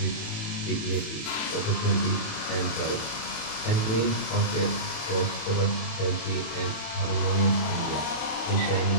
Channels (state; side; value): late; right; 27 ms